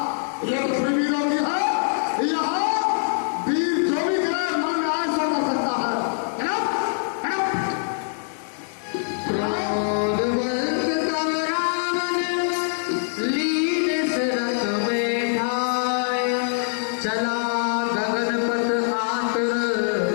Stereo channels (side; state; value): right; silent; digital silence